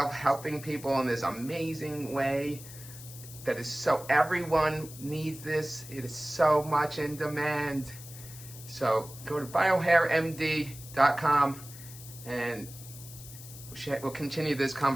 helping people in this amazing way that is so, everyone needs this. It is so much in demand. So go to biohairmd.com and we'll continue this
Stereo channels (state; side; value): noise; left; hiss, 15 dB below the sound